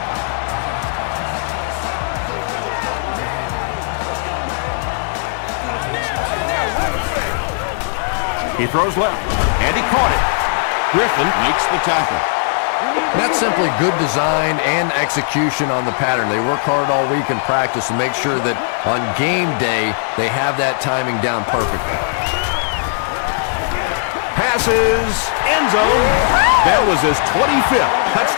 He throws left, and he caught it. Griffin makes the tackle. That's simply good design and execution on the pattern. They work hard all week in practice to make sure that on game day they have that timing down perfectly. Passes, end zone. That was his 25th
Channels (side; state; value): right; silent; digital silence